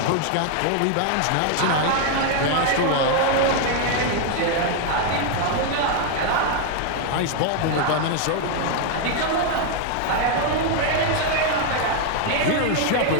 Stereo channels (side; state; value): both; different; correlation 0.00